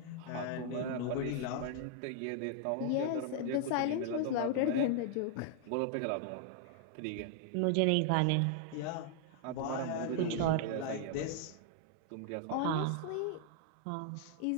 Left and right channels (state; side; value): different; both; correlation 0.00